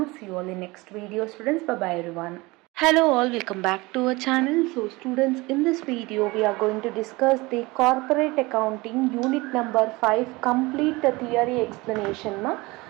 See you all in next video, students. Bye bye everyone. Hello all, welcome back to our channel. So students, in this video we are going to discuss the corporate accounting unit number 5 complete theory explanation.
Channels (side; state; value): left; quieter; 22.8 dB